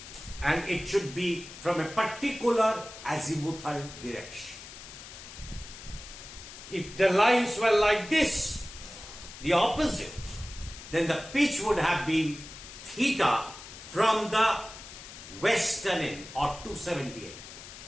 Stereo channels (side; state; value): left; noise; hiss, 14 dB below the sound